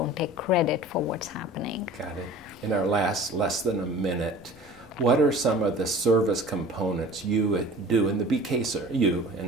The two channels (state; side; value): normal; both; correlation 0.43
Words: take credit for what's happening. Got it. In our less than a minute, what are some of the service components you do in the BK Center, you